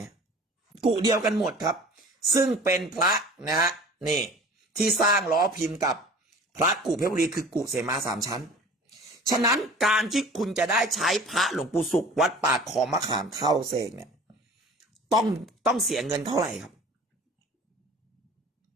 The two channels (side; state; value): both; normal; correlation 0.44